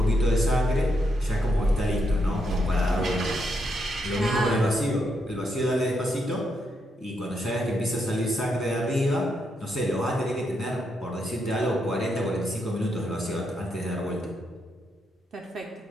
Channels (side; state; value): both; normal; correlation 0.80